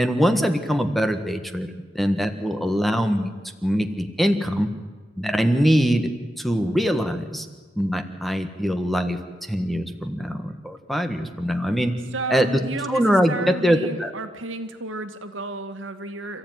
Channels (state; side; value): normal; both; correlation 0.88